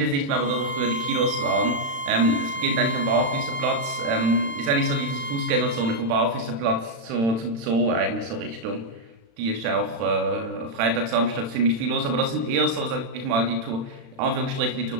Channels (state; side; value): late; left; 35 ms